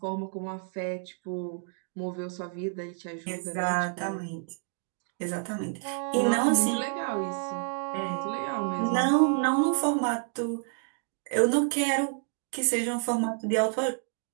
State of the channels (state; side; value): silent; left; 58 dB below the other